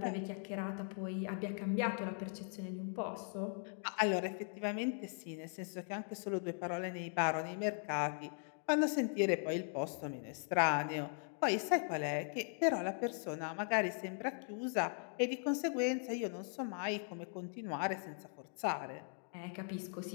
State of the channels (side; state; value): right; silent; 52 dB below the other